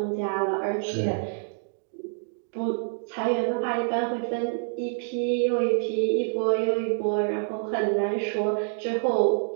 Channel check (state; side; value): silent; left; digital silence